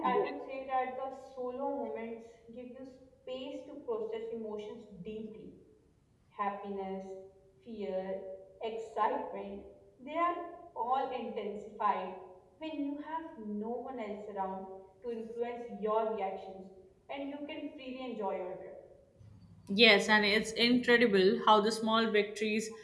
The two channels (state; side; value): identical; both; correlation 1.00